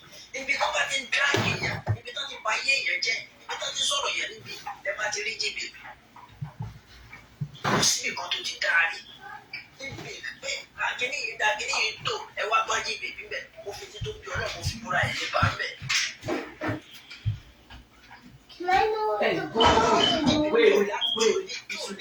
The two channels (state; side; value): identical; both; correlation 1.00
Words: Ibi tó bá ti ń dráàgì yẹn, ibi tó ti ba ayé yẹn jẹ́, ibi tó ti sọ̀rọ̀ yẹn níbi ẹ bá ti rí jí bèbè. Kò sí nǹkan tó ti dáa rí. Níbi pé kíní yìí dá kíní yìí tó ẹ wá gbọ́ jí bèbè bẹ̀, mo fi ti tó bí ọlọ́run mo fi múra ẹ̀ lé bá ń bẹ̀.